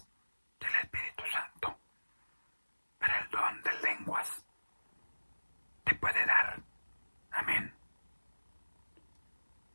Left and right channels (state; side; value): inverted; both; correlation -1.00